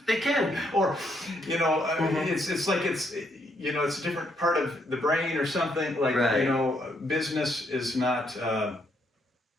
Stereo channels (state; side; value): normal; both; correlation 0.73